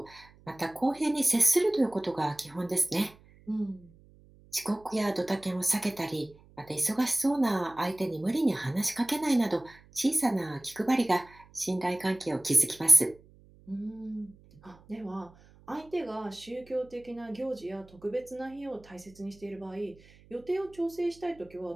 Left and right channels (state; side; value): noise; right; hum, 26 dB below the sound